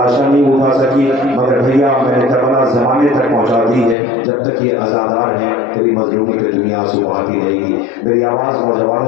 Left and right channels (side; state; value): right; drops out; at 4.0 s